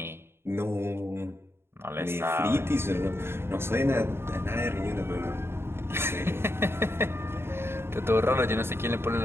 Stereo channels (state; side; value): late; left; 0.12 ms